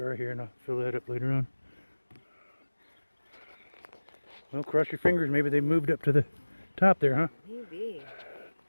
here and I'll fill that up later on. Well, cross your fingers. Maybe they moved up to the top there, huh? Maybe.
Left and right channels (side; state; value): both; inverted; correlation -1.00